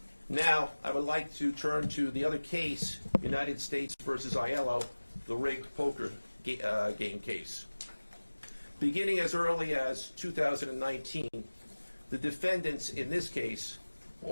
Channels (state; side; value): inverted; both; correlation -1.00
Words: Now, I would like to turn to the other case, United States versus Aiello, the rigged poker game case. Beginning as early as 2019, the defendants in this case